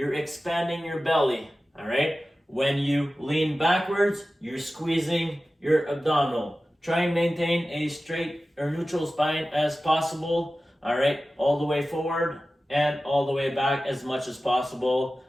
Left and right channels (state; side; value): normal; both; correlation 0.95